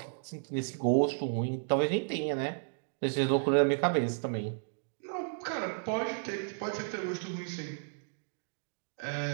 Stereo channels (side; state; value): left; silent; digital silence